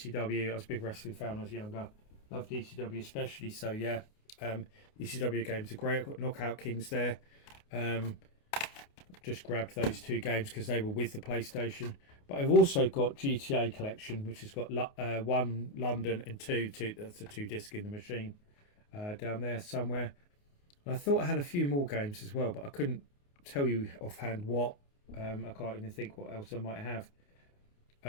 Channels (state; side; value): late; right; 28 ms